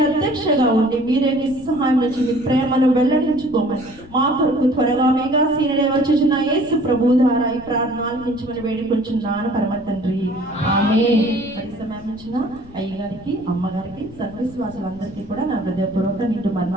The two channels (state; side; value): noise; left; rumble, 20 dB below the sound